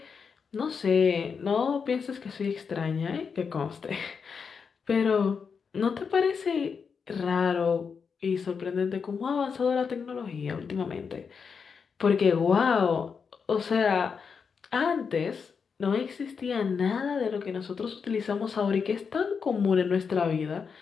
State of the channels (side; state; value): right; quieter; 5.9 dB